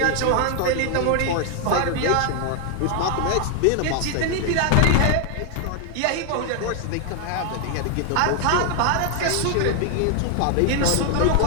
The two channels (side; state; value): both; different; correlation 0.00